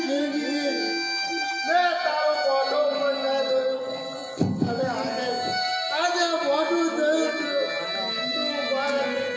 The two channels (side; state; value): both; identical; correlation 1.00